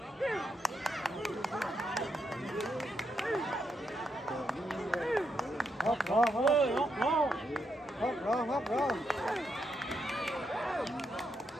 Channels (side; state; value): both; normal; correlation 0.81